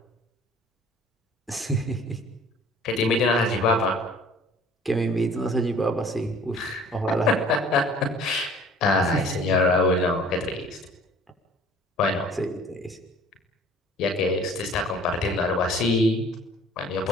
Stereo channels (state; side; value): normal; both; correlation 0.50